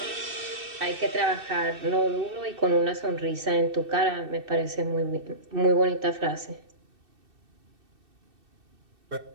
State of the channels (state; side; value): late; left; 2.6 ms